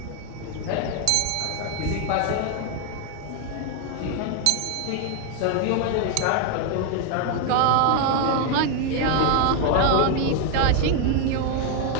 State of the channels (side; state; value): both; different; correlation 0.00